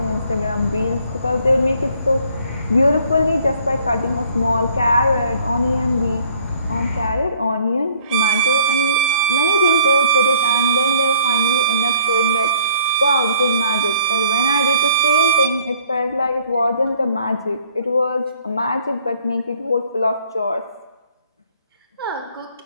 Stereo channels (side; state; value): both; inverted; correlation -0.59